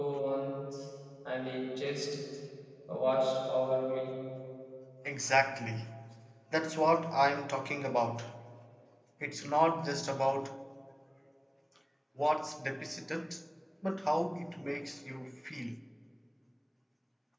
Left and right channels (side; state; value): both; identical; correlation 1.00